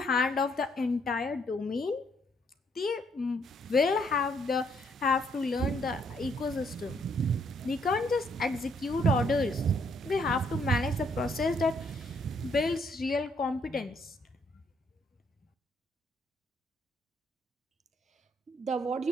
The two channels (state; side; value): normal; both; correlation 0.70